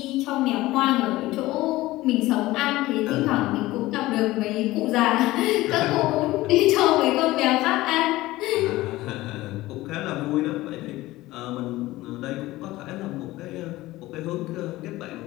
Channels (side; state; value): right; quieter; 17.9 dB